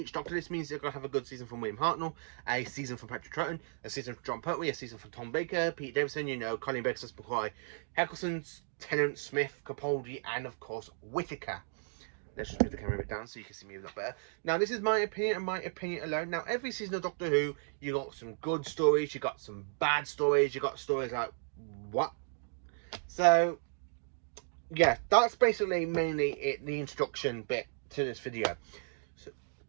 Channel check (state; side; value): silent; left; digital silence